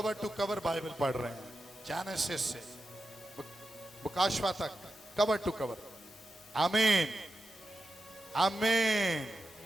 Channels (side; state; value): both; normal; correlation 0.90